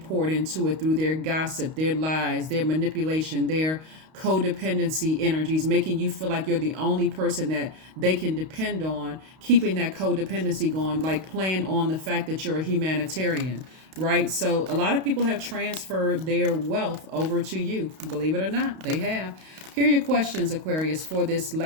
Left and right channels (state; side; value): late; left; 32 ms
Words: into it through their gossip, their lies, their manipulation, their codependency energies, making you feel like you're the only person that they can depend on, keeping that codependency going, like playing on the fact that you're a humanitarian, right? So a lot of people have transferred their wealth over to you. Believe it or not, they have. Here are your questions, Aquarius, for this